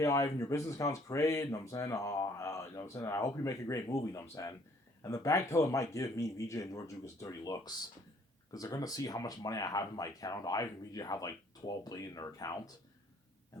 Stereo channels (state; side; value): normal; both; correlation 0.61